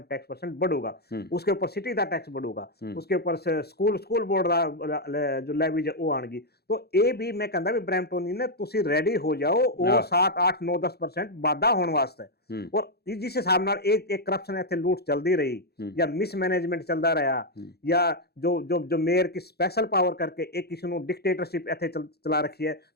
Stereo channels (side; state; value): right; late; 0.47 ms